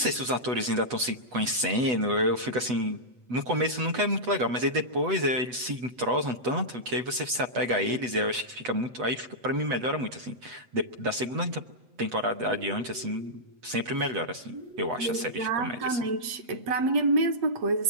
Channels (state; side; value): late; left; 8.0 ms